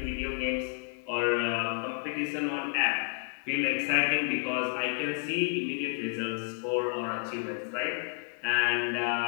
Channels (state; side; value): silent; right; 57 dB below the other